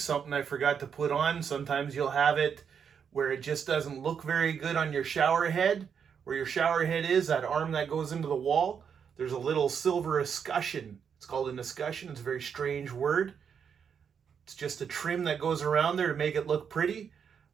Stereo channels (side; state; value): left; quieter; 7.2 dB